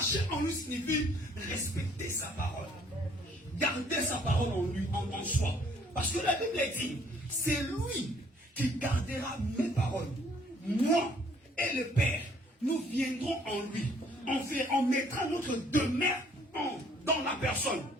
en lui signifie respecter sa parole. Garder sa parole en lui, en soi. Parce que la Bible dit, c'est lui qui gardera mes paroles, moi et le Père, nous viendrons en lui. On mettra notre demeure dans la personne.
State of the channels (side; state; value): both; normal; correlation 0.61